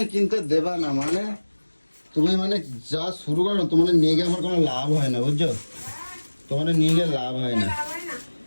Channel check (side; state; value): both; inverted; correlation -1.00